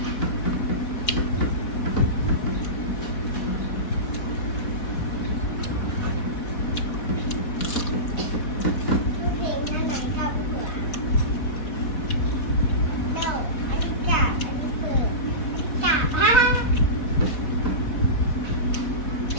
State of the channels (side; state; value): right; late; 4.2 ms